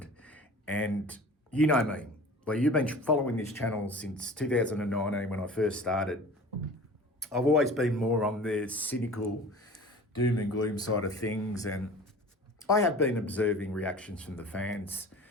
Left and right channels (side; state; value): both; normal; correlation 0.41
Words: and you know me, like you've been following this channel since 2019 when I first started. I've always been more on the cynical doom and gloom side of things, and I have been observing reactions from the fans